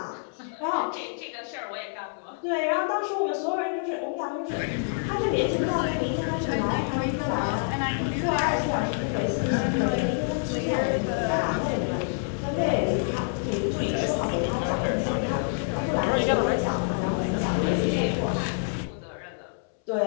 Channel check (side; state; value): right; silent; 60 dB below the other